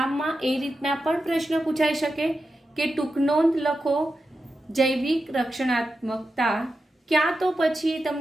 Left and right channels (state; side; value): normal; both; correlation 0.90